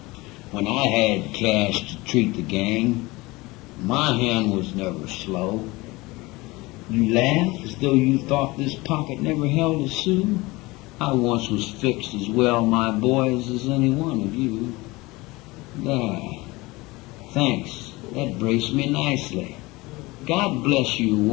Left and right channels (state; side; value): quieter; right; 22.1 dB